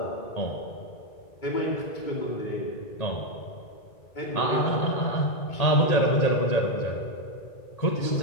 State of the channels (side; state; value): right; late; 1.8 ms